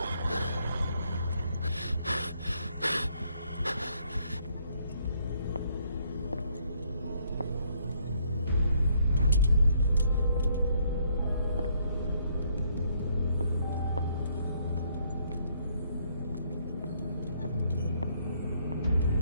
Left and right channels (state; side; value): inverted; both; correlation -0.69